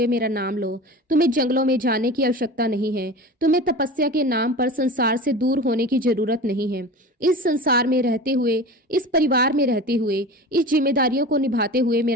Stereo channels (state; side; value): normal; both; correlation 0.33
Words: मेरा नाम लो। तुम्हें जंगलों में जाने की आवश्यकता नहीं है, तुम्हें तपस्या के नाम पर संसार से दूर होने की जरूरत नहीं है। इस संसार में रहते हुए, इस परिवार में रहते हुए, इस जिम्मेदारियों को निभाते हुए